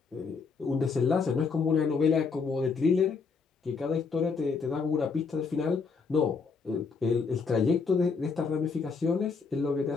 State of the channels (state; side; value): quieter; right; 5.0 dB